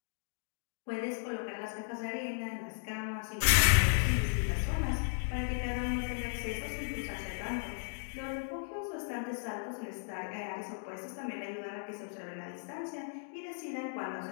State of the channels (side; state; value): right; silent; digital silence